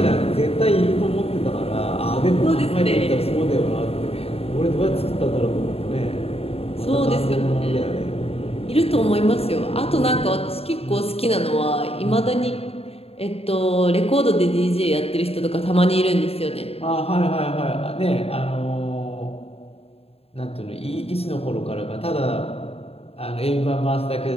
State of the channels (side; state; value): right; late; 0.29 ms